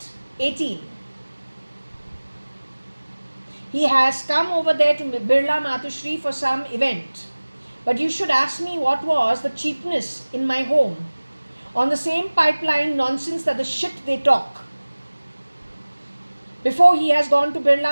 he has come over there to Birla Matushri for some event. But you should ask me what was the cheapness in my home on the same pipeline nonsense that the shit they talk. Before he has gone to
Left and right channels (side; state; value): both; inverted; correlation -1.00